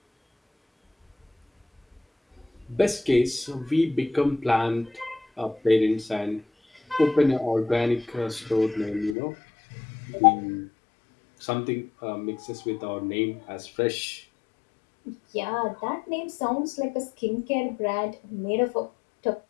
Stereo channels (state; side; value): drops out; right; at 9.2 s